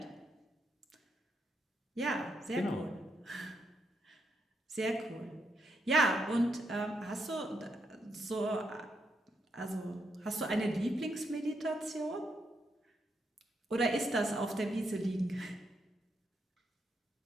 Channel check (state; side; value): normal; both; correlation 0.80